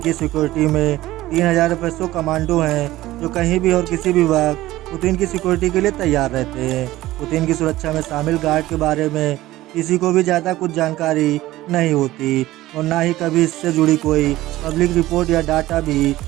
सिक्योरिटी में 3000 एफएसओ कमांडो हैं जो कहीं भी और किसी भी वक्त पुतिन की सिक्योरिटी के लिए तैयार रहते हैं। पुतिन की सुरक्षा में शामिल गार्ड के बारे में किसी को भी ज़्यादा कुछ जानकारी नहीं होती और ना ही कभी इससे जुड़ी कोई पब्लिक रिपोर्ट या डाटा भी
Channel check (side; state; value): left; quieter; 16.5 dB